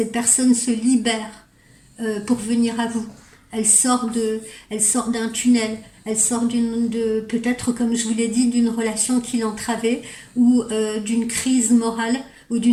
personne se libère pour venir à vous. Elle sort d'un tunnel. Elle sort peut-être, comme je vous l'ai dit, d'une relation qui l'entravait ou d'une crise morale ou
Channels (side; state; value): both; identical; correlation 1.00